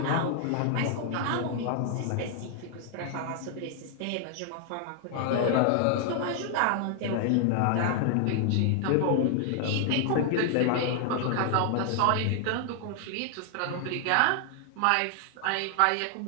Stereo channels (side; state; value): both; different; correlation 0.00